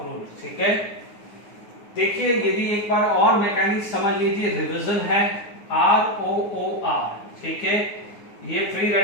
रूल, ठीक है। देखिए यदि एक बार और मैकेनिक्स समझ लीजिए, रिवीजन है ROOR, ठीक है, ये फ्री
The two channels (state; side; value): late; right; 9.7 ms